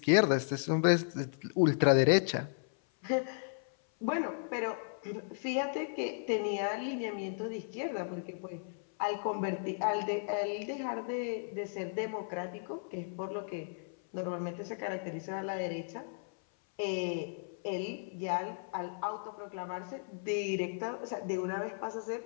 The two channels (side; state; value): right; silent; 55 dB below the other